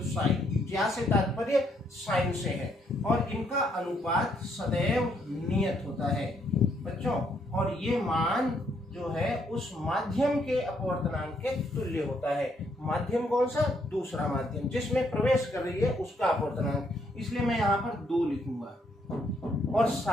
साइन। ज्या से तात्पर्य साइन से है और इनका अनुपात सदैव नियत होता है बच्चों। और ये मान जो है उस माध्यम के अपवर्तनांक के तुल्य होता है। माध्यम कौन सा? दूसरा माध्यम, जिसमें प्रवेश कर रही है उसका अपवर्तनांक। इसलिए मैं यहाँ पर 2 लिखूंगा और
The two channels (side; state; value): both; normal; correlation 0.72